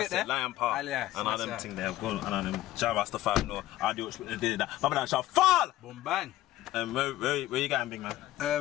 it there? Lion Paw. Yeah, and all them yeah. thing there. Good. And all them Rastafarianism. No, I do what did that. Baba shall fall. Boom, bang. Where you going, big man?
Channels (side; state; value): right; quieter; 15.0 dB